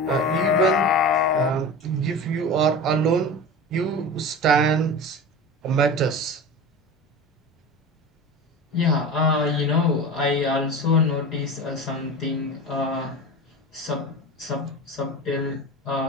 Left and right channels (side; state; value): both; normal; correlation 0.30